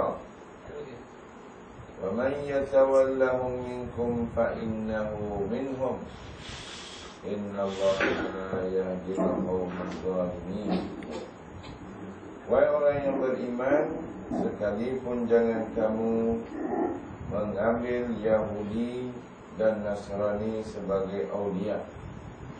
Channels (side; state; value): both; identical; correlation 1.00